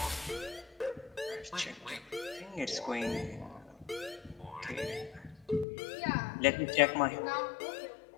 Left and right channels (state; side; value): drops out; right; at 5.7 s